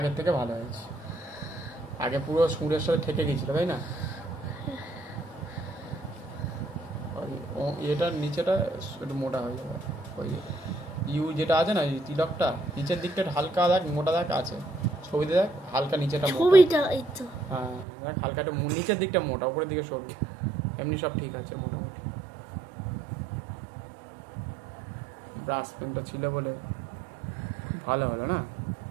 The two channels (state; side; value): drops out; left; at 17.9 s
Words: থেকে ভালো হয়েছে। আগে পুরো সুরের সাথে ঠেকে গেছিল, তাই না? এটার নিচেটা একটু মোটা হয়ে যাবে। ওই ইউ যেটা আছে না, তিলকটা নিচের দিকটা হালকা দাগ মোটা দাগ আছে, ছবিতে দেখ হালকা নিচেটা মোটা। ছবিটা এই তো হ্যাঁ দেখ হালকা একটু নিচের দিকটা মোটা, উপরের দিকে সরু। এমনি সব ঠিক আছে মোটামুটি। ব্রাশ পেনটা ছিল বলে ভালো হলো না।